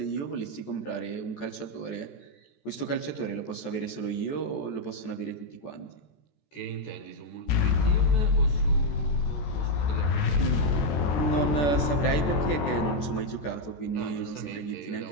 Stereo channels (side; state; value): right; late; 14 ms